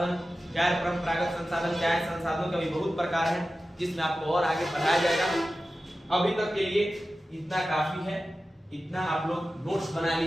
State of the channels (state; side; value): normal; both; correlation 0.94